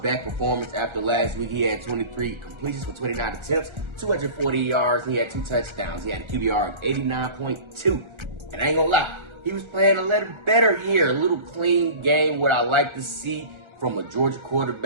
performance after last week. He had 23 completions for 29 attempts, 240 yards, and he had 2 touchdowns. He had a QBR of 89.2. And I ain't gonna lie, he was playing a little better here, a little clean game, what I like to see from a Georgia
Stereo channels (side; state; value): left; late; 1.3 ms